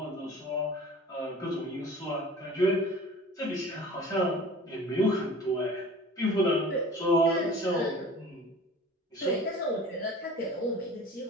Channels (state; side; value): normal; both; correlation 0.42